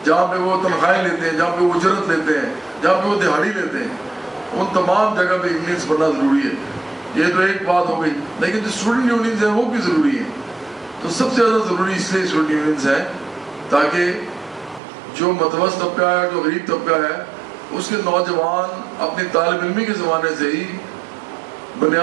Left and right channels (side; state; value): left; drops out; at 14.8 s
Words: جہاں پہ وہ تنخواہیں لیتے ہیں، جہاں پہ وہ اجرت لیتے ہیں، جہاں پہ وہ دہاڑی لیتے ہیں، ان تمام جگہ پہ یونینز بننا ضروری ہے. یہ تو ایک بات ہو گئی. لیکن جو اسٹوڈنٹ یونینز ہیں وہ بھی ضروری ہیں. تو سب سے زیادہ ضروری اس لیے اسٹوڈنٹ یونینز ہیں تاکہ جو متوسط طبقہ ہے، جو غریب طبقہ ہے، اس کے نوجوان اپنی طالب علمی کے زمانے سے ہی